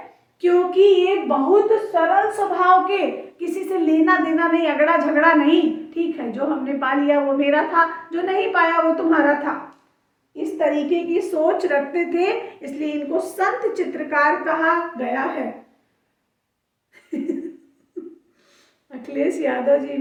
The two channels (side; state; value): both; identical; correlation 1.00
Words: क्योंकि ये बहुत सरल स्वभाव के, किसी से लेना देना नहीं, अगड़ा झगड़ा नहीं। ठीक है, जो हमने पा लिया वो मेरा था, जो नहीं पाया वो तुम्हारा था, इस तरीके की सोच रखते थे, इसलिए इनको संत चित्रकार कहा गया है। अखिलेश यादव जी